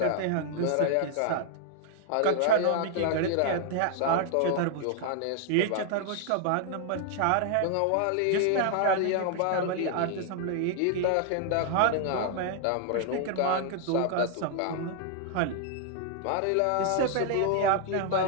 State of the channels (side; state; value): both; different; correlation 0.00